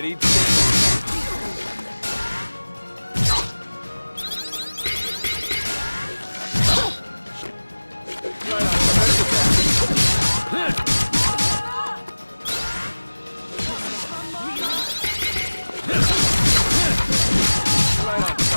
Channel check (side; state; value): both; inverted; correlation -1.00